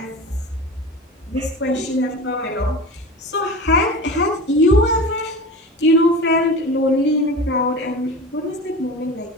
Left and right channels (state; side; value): normal; both; correlation 0.32